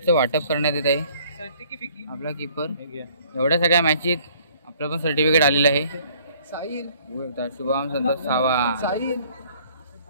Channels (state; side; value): inverted; both; correlation -0.58